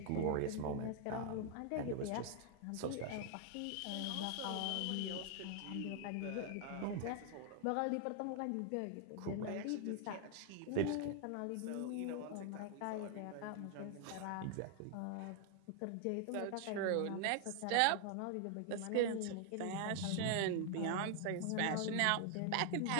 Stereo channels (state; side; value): different; both; correlation 0.00